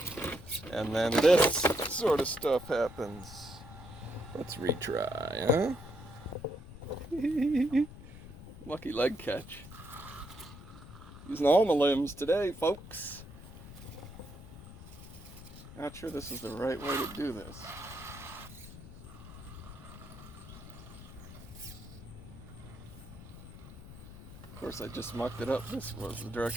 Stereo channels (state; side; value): noise; left; rumble, 15 dB below the sound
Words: And then this sort of stuff happens. Let's retry, huh? Lucky leg catch. Using all my limbs today, folks. Not sure this is the right way to do this. Of course, I just mucked it up. This was the